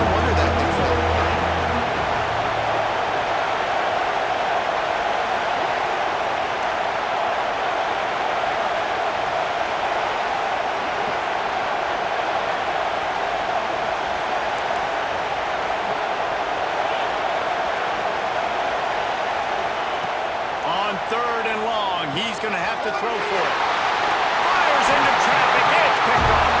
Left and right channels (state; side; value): identical; both; correlation 1.00